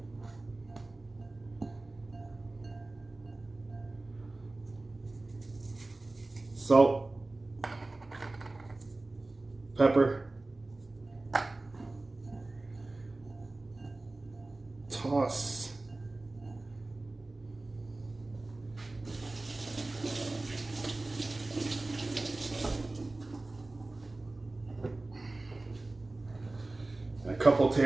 Salt, pepper, toss. And a couple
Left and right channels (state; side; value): quieter; left; 3.0 dB